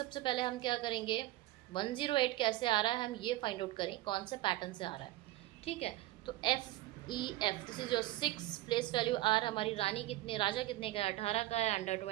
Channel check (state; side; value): quieter; left; 17.0 dB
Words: पहले हम क्या करेंगे, 108 कैसे आ रहा है हम ये फाइंड आउट करें, कौन से पैटर्न से आ रहा है, ठीक है। तो FEF this is your 6 place value. R हमारी रानी कितने, राजा कितने का है, 18 का है, अंडर